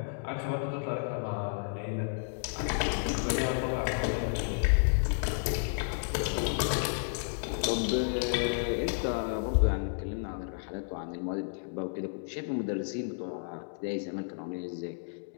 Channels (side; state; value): right; silent; digital silence